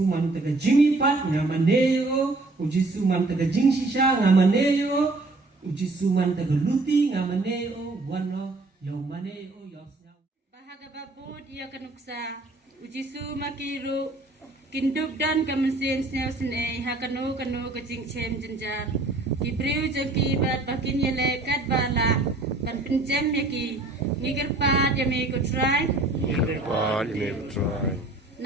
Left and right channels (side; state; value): left; quieter; 3.1 dB